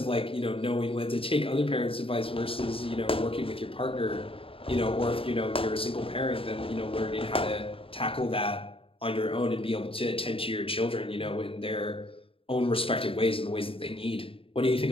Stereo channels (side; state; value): right; late; 0.27 ms